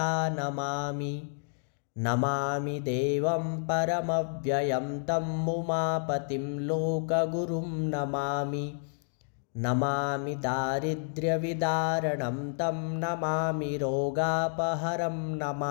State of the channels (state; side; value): silent; right; digital silence